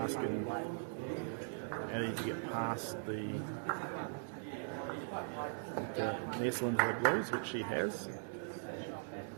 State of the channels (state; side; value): silent; left; digital silence